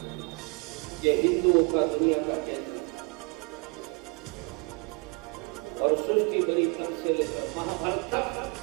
ये हिंदुओं का दुनिया का केंद्र और सृष्टि बनी तब से लेकर महाभारत तक,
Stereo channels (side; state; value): left; quieter; 32.2 dB